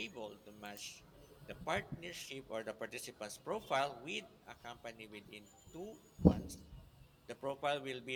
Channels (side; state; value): both; identical; correlation 1.00